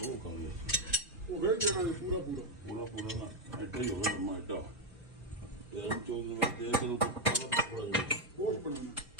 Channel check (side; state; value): both; normal; correlation 0.04